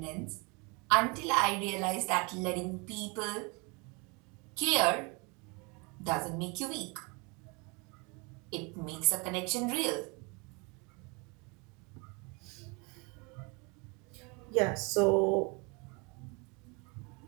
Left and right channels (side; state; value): left; quieter; 30.1 dB